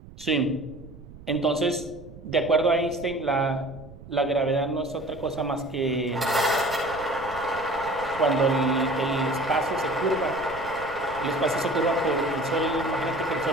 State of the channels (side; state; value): right; noise; rumble, 18 dB below the sound